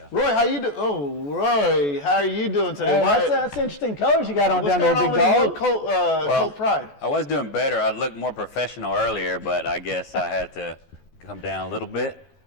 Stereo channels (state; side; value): late; right; 14 ms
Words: Roy, how you doing? Oh, Roy, how are you doing today? Hey, that's interesting colors you got on down there, big dog. What's going on with Colt Pride? I was doing better. I looked more professional earlier, but I guess I had to come down a little bit.